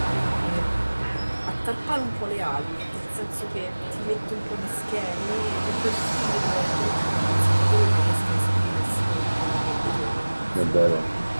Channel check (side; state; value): both; inverted; correlation -1.00